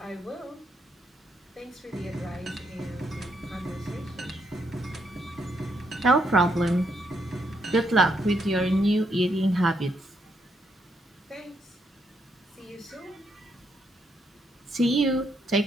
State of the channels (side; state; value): both; normal; correlation 0.77